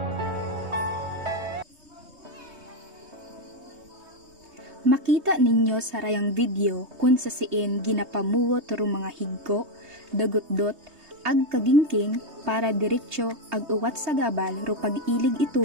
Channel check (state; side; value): late; left; 3.2 ms